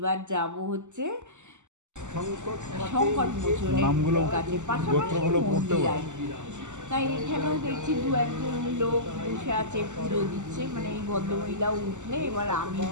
যাব হচ্ছে সংকট মোচনের কাছে, পাশাপাশি মন্দির আর কি। তাই এখানেও দেখছি 2-1জন লোক বসে আছে, পুজো দিচ্ছে। মানে এই ভদ্রমহিলাও উঠলে এবার আমি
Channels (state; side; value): late; left; 0.84 ms